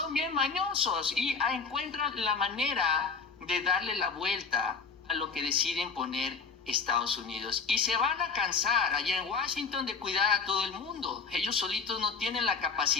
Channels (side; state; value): right; quieter; 5.1 dB